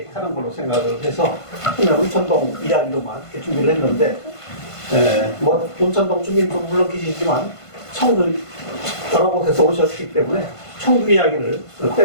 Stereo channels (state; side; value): late; right; 1.5 ms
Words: 하는 걸로 생각을 해서 그냥 온천동 이야기로만 이렇게 준비를 했는데 뭐 온천동 주민도 물론 계시지만 청주 여러 곳에서 오셨기 때문에 청주 이야기를